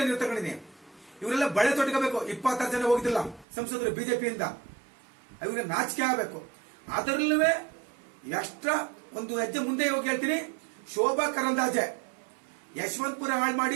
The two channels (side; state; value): left; drops out; at 3.5 s